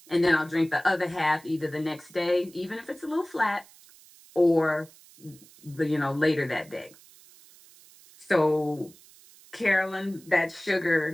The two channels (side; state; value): right; noise; hiss, 24 dB below the sound